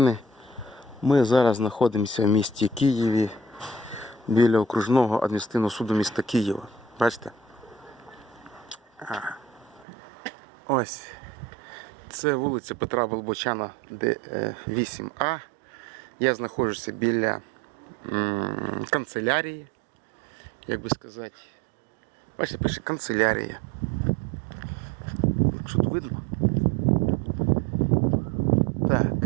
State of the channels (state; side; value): drops out; left; at 9.9 s